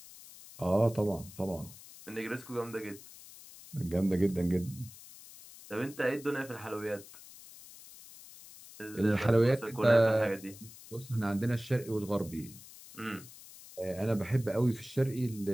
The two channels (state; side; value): noise; left; hiss, 18 dB below the sound